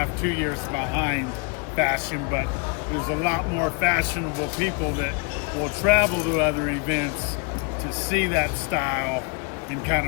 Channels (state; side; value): quieter; right; 31.7 dB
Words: 2 years behind fashion, but there's a lot more fashionable people that will travel to other events to see that style and kind